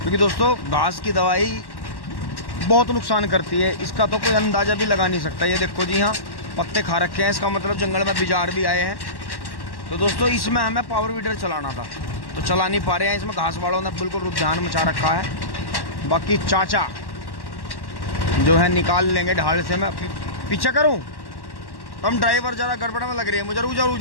दोस्तों घास की दवाई बहुत नुकसान करती है, इसका तो कोई अंदाज़ा भी लगा नहीं सकता। ये देखो जी, यहाँ पत्ते खा रखे हैं, इसका मतलब जंगल में बिजार भी आए हैं। तो दोस्तों इसमें हमें पावर वीडर चलाना था, तो चला नहीं पा रहे हैं। इसमें घास वालों ने बिल्कुल रुझान मचा रखा है। बाकी चाचा जो है निकाल लेंगे ढाल से। मैं पीछे करूँ? हम ड्राइवर ज़रा गड़बड़ में लग रही है मुझे। रुक जाओ रुक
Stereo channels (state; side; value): late; right; 1.1 ms